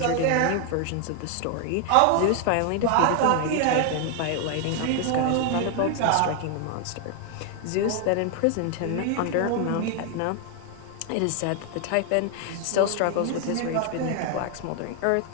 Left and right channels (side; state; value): both; different; correlation 0.00